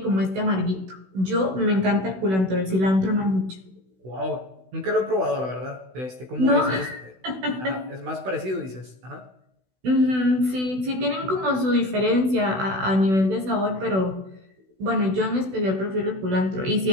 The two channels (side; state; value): left; late; 16 ms